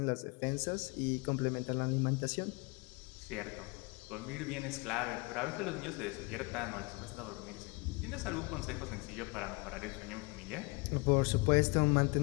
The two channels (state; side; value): quieter; right; 28.4 dB